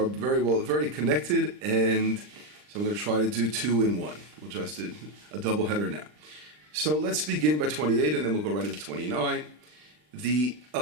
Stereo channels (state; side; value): late; left; 39 ms